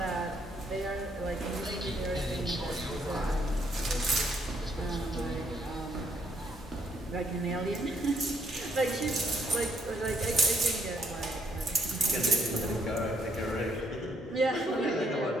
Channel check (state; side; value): normal; both; correlation 0.70